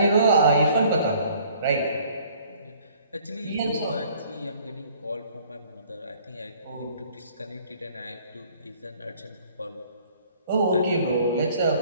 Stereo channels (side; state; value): both; inverted; correlation -0.57